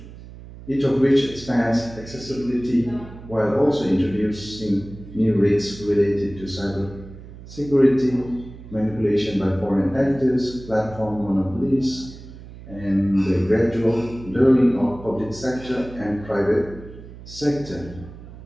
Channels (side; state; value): right; noise; hum, 16 dB below the sound